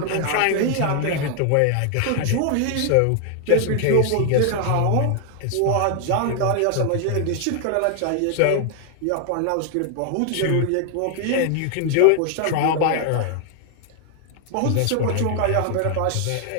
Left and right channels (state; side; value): different; both; correlation 0.00